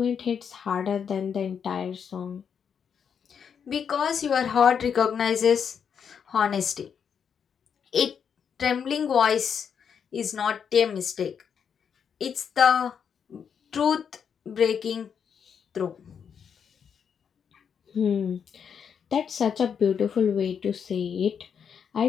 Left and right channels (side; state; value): right; quieter; 7.3 dB